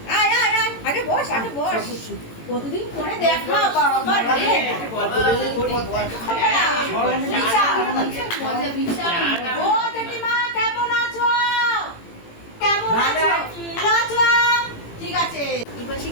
আয় আয় আয়, আগে বস, আগে বস। কতদিন পরে দেখা বাবা রে। ও জেঠিমা কেমন আছো? কেমন আছো? আছো? ঠিক আছে। এবারে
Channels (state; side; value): late; right; 18 ms